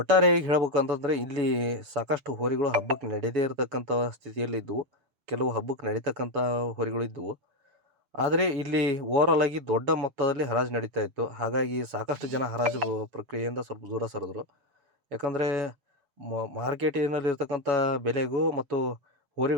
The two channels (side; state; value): left; late; 7.1 ms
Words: ಹೇಳ್ಬೇಕಂತಂದರೆ ಇಲ್ಲಿ ಸಾಕಷ್ಟು ಹೋರಿಗಳು ಹಬ್ಬಕ್ಕೆ ನಡೆಯದೇ ಇರತಕ್ಕಂಥ ಸ್ಥಿತಿಯಲ್ಲಿ ಇದ್ದವು. ಕೆಲವು ಹಬ್ಬಕ್ಕೆ ನಡೀತಕ್ಕಂಥ ಹೋರಿಗಳು ಇದ್ದವು. ಆದರೆ ಇಲ್ಲಿ ಓವರಾಲ್ ಆಗಿ ದೊಡ್ಡ ಮೊತ್ತದಲ್ಲಿ ಹರಾಜು ನಡೀತಾ ಇತ್ತು. ಹಾಗಾಗಿ ಸಾಕಷ್ಟು ಜನ ಹರಾಜು ಪ್ರಕ್ರಿಯೆಯಿಂದ ಸ್ವಲ್ಪ ದೂರ ಸರಿದ್ರು. ಯಾಕಂದರೆ ಮಾರ್ಕೆಟಿನಲ್ಲಿರ್ತಕ್ಕಂಥ ಬೆಲೆಗೂ ಮತ್ತು